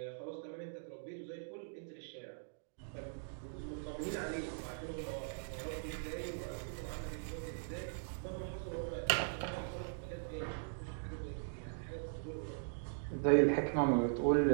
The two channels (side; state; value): left; silent; digital silence